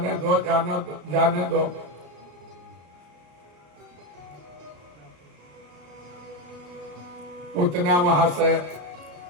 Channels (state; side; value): late; left; 34 ms